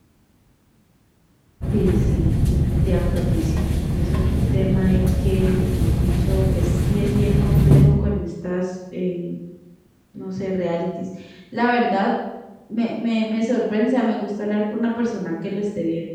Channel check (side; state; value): both; identical; correlation 1.00